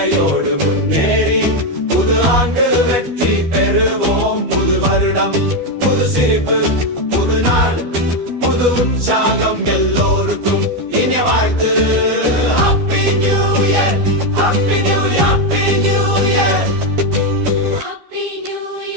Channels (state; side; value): late; left; 12 ms